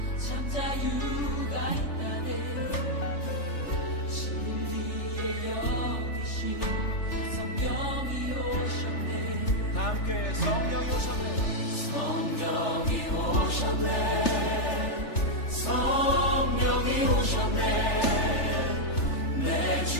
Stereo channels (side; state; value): right; late; 3.4 ms